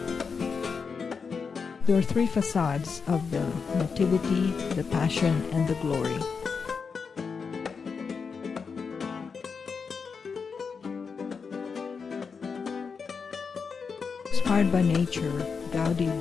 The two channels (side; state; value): right; quieter; 5.5 dB